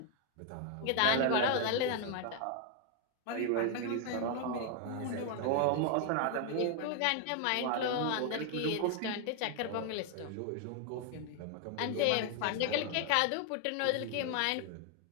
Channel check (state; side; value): different; both; correlation 0.00